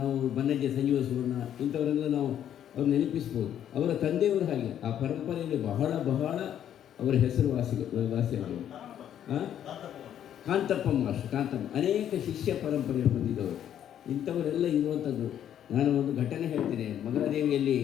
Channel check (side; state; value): right; quieter; 10.2 dB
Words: ಬನ್ನಜ್ಜ ಸಂಜೀವ ಸುವರ್ಣ ಇಂಥವರೆಲ್ಲ ನಾವು ಅವ್ರು ನೆನಪಿಸ್ಬೋದು. ಅವರ ತಂದೆಯವರು ಹಾಗೆ ಆ ಪರಂಪರೆಯಲ್ಲಿ ಬಹಳ ಅವರ ಹೆಸರು ವಾಸಿಯಾದರು. ಕಾಂತಪ್ಪ ಅನೇಕ ಶಿಷ್ಯ ಪರಂಪರೆ ಹೊಂದಿದವರು. ಇಂಥವರೆಲ್ಲ ಇರುವಂಥದ್ದು. ನಾನು ಒಂದು ಘಟನೆ ಹೇಳ್ತೇನೆ. ಮಗಳಾದೇವಿಯಲ್ಲಿ